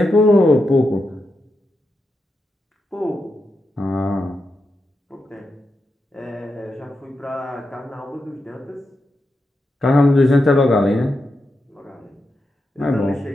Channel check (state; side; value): normal; both; correlation 0.87